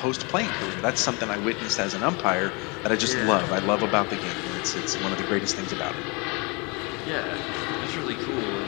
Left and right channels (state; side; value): quieter; right; 29.7 dB